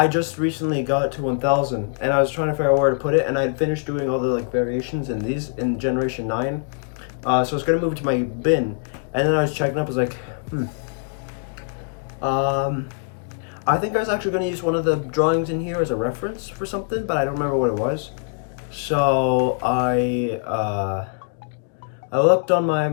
just recently got to 1000, and I was trying to figure out where to put it, and I had finished doing all the, variations in these, in Generation 9. So I was gonna move it to my bin, and then I was checking up, I was like, I think I was actually gonna use one of the drawings in here as a reference for something, but I don't remember what it was. So I looked on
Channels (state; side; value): silent; right; 64 dB below the other